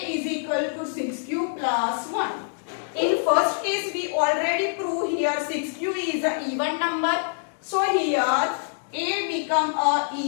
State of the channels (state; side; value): silent; right; digital silence